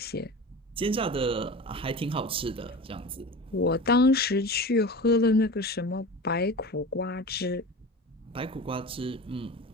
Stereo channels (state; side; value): normal; both; correlation 0.32